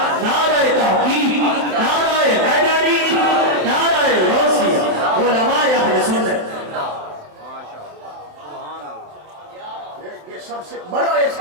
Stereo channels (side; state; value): left; late; 27 ms